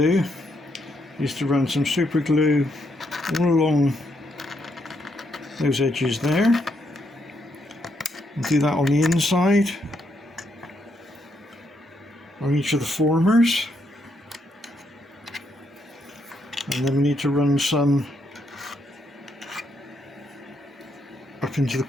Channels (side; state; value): both; normal; correlation 0.77